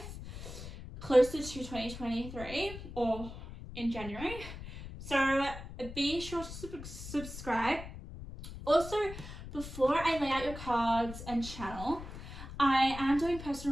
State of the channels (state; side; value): noise; left; rumble, 11 dB below the sound